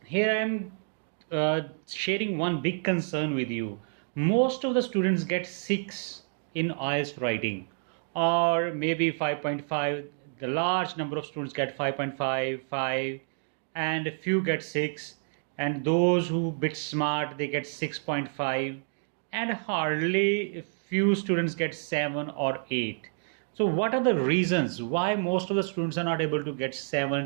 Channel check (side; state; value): left; silent; digital silence